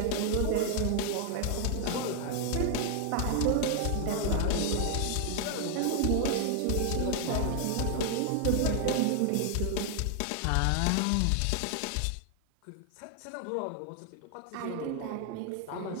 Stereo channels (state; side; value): different; both; correlation 0.00